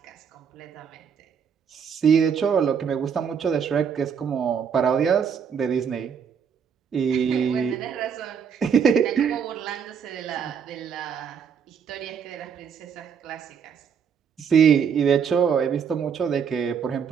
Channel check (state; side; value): quieter; left; 7.1 dB